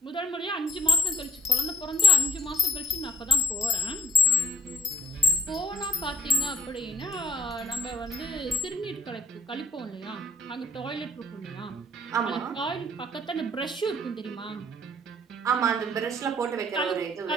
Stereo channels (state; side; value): normal; both; correlation 0.56